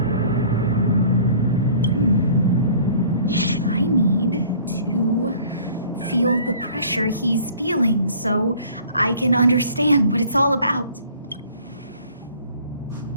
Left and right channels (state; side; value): inverted; both; correlation -0.51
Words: I need to feel the pressure he's feeling so I can understand what it's all about.